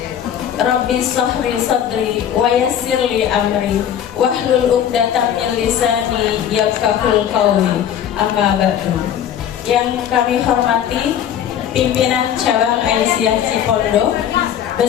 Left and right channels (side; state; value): right; quieter; 9.6 dB